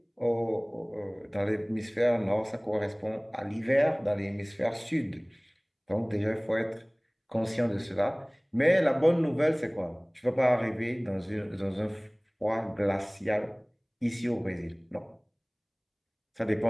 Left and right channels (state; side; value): identical; both; correlation 1.00